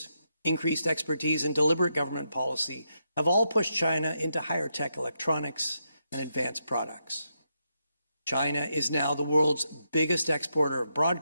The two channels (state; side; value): inverted; both; correlation -0.82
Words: increased expertise, and deliberate government policy have all pushed China into higher tech electronics and advanced products. China is now the world's biggest exporter of